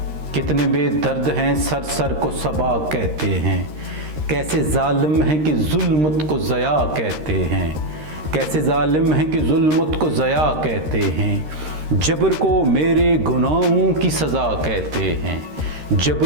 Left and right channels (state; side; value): late; left; 13 ms